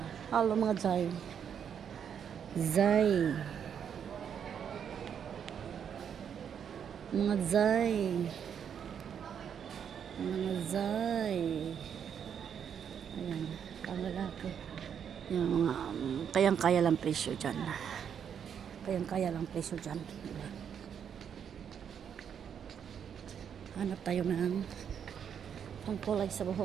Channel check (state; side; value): quieter; left; 8.0 dB